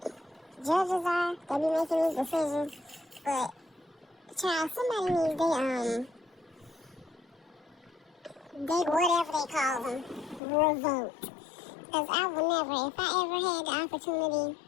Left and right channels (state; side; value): drops out; right; at 10.4 s